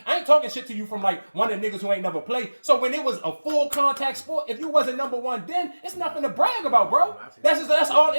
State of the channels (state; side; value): inverted; both; correlation -1.00